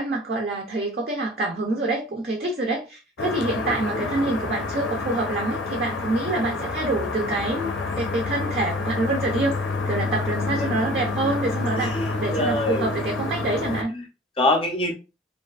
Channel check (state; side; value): normal; both; correlation 0.43